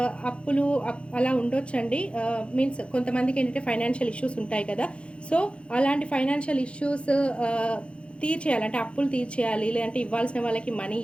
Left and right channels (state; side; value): late; right; 0.059 ms